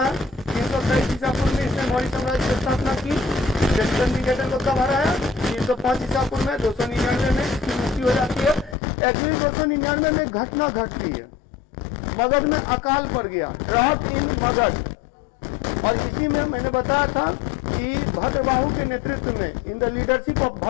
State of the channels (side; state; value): right; drops out; at 8.8 s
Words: है. 323 ईसा पूर्व में इसने मौर्य साम्राज्य की स्थापना की. सेल्यूकस निकेटर को कब हराया? 305 ईसा पूर्व में. 299 में इसकी मृत्यु हो जाती है. एक्चुअली 299 में घटना घटती है, मगध में अकाल पड़ गया, ड्रॉट इन मगध. और इसी में मैंने बताया था कि भद्रबाहु के नेतृत्व में, in the leadership of